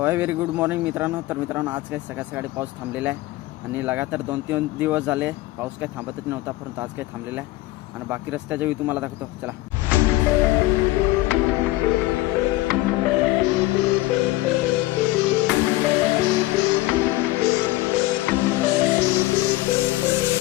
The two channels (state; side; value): quieter; right; 18.5 dB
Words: आहे व्हेरी गुड मॉर्निंग मित्रांनो. तर मित्रांनो आज काही सकाळी पाऊस थांबलेला आहे आणि लगातार 2-3 दिवस झाले पाऊस काही थांबतच नव्हता, परंतु आज काही थांबलेला आहे आणि बाकी रस्त्याच्या व्ह्यू तुम्हाला दाखवतो. चला.